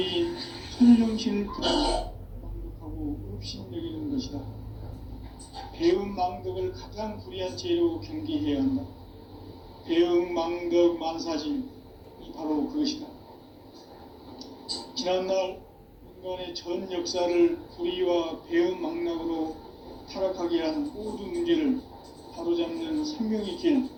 천정신을 망독하고 업신여기는 것이다. 배은망덕을 가장 불의한 죄로 경계해야 한다. 배은망덕 만사진이 바로 그것이다. 지난날 인간의 전 역사를 불의와 배은망락으로 타락하게 한 모든 문제를 바로잡는 생명의 길,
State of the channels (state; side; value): identical; both; correlation 1.00